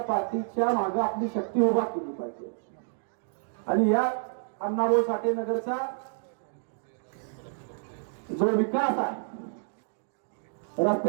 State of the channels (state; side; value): silent; left; digital silence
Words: पार्टीच्या मागे आपली शक्ती उभा केली पाहिजे आणि या अण्णाभाऊ साठे नगरचा जो विकास आहे,